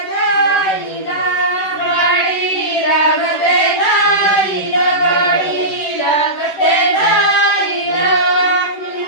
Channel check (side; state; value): right; late; 10 ms